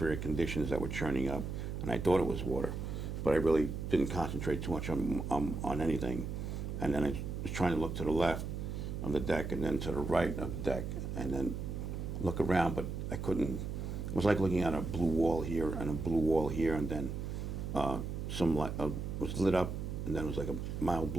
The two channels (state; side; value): noise; right; hum, 4 dB below the sound